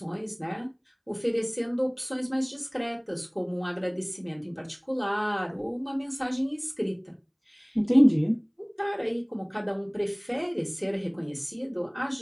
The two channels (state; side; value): identical; both; correlation 1.00